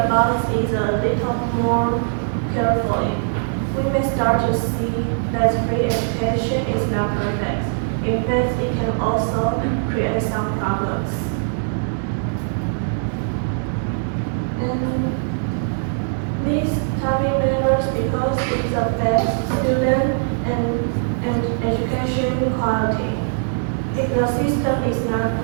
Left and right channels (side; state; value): left; silent; 63 dB below the other